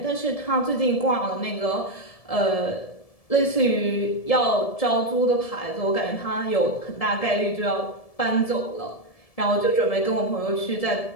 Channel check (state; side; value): late; right; 1.7 ms